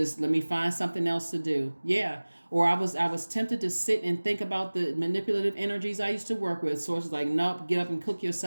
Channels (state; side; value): inverted; both; correlation -1.00